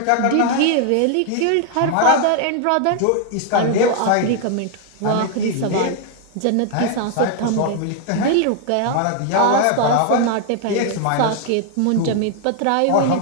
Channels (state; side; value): different; both; correlation 0.00